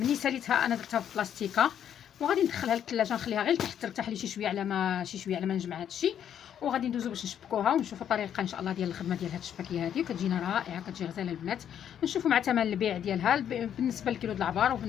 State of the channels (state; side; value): quieter; right; 9.4 dB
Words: ساليتها انا درتها في بلاستيكه، وغادي ندخلها للثلاجه، نخليها غير تحت ترتاح لي شي شويه على ما نجمع هذا الشيء. وغادي ندوزو باش نشبكوها ونشوفوا الطريقه ان شاء الله ديال الخدمه ديال هاد الشباكيه هذه، كتجينا رائعه، كتجي غزاله البنات. نشوفوا مع ثمن البيع ديالها بالنسبه للكيلو د العبار